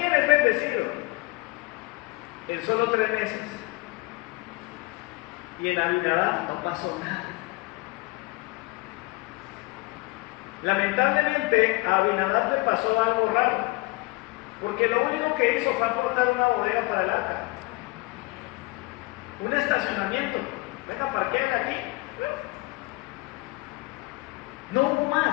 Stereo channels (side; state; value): right; quieter; 23.9 dB